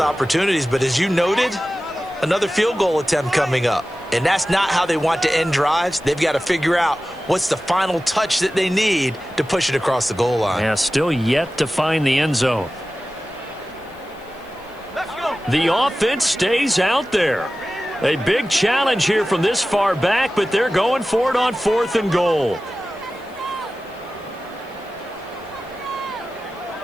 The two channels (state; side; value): noise; left; hiss, 29 dB below the sound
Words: but as you noted, another field goal attempt coming up. And that's not how they want to end drives. They've got to figure out what's the final touch that they need to push it across the goal line. Yeah, still yet to find the end zone. The offense stays out there. A big challenge here from this far back, but they're going for it on 4th and goal.